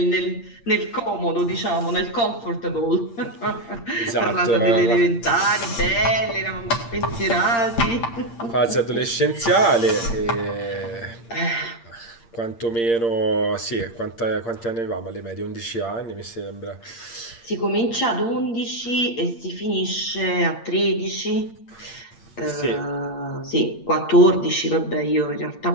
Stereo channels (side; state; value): right; late; 8.7 ms